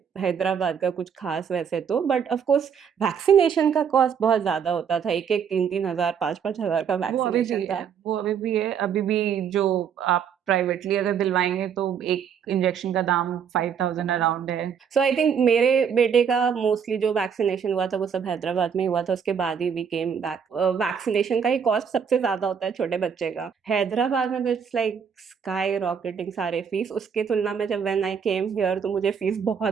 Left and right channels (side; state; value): left; quieter; 7.3 dB